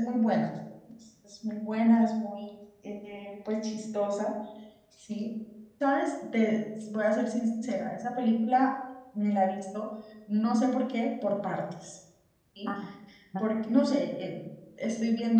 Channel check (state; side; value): identical; both; correlation 1.00